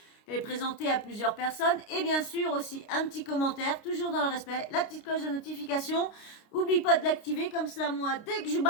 Elle est présentée à plusieurs personnes. Et bien sûr aussi un petit commentaire, toujours dans le respect, la petite cloche de notification. Oublie pas de l'activer, comme ça moi, dès que je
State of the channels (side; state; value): right; late; 29 ms